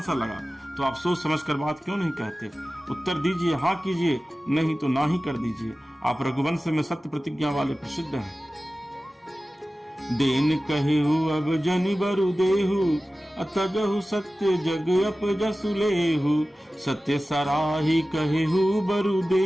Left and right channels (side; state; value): both; normal; correlation 0.96